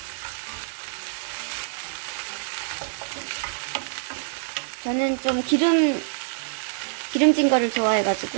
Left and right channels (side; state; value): left; silent; 61 dB below the other